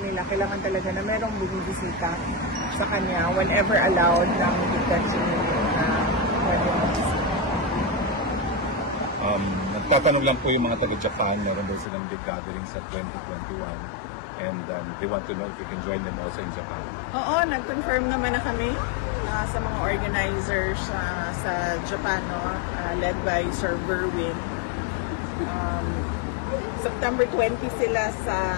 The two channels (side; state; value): right; drops out; at 11.9 s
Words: kailangan talaga na merong bumibisita sa kanya whenever allowed ng detention unit na pwede magbisita. Nagtatanong lang po yung mga taga-Japan, meron daw silang big gathering sa 2021 and they want to know if you can join them also in Japan. Oo, nag-confirm naman na kami sa mga organizers sa Japan, led by Sir Berwin. September 20 sila